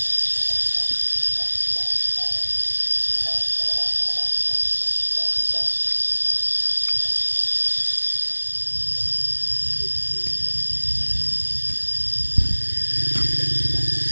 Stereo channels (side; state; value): both; inverted; correlation -1.00